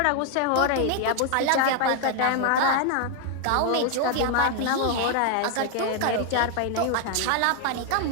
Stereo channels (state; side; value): different; both; correlation 0.00